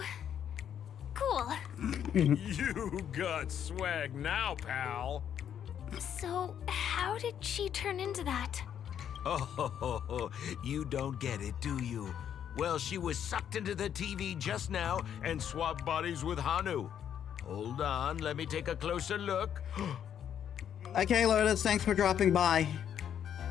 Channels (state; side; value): quieter; right; 9.2 dB